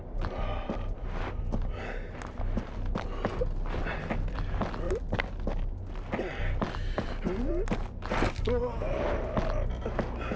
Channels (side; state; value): both; identical; correlation 1.00